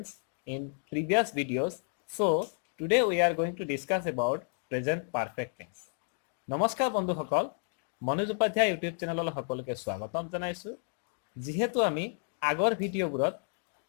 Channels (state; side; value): silent; right; 57 dB below the other